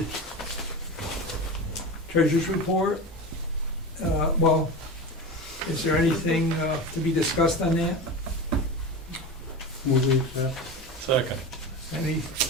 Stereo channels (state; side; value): normal; both; correlation 0.26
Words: treasurer's report. Well, is there anything to be discussed on that? Will we accept? Second.